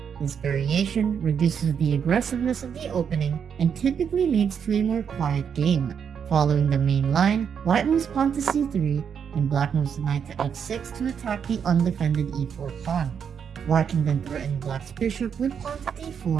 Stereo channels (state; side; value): quieter; left; 7.4 dB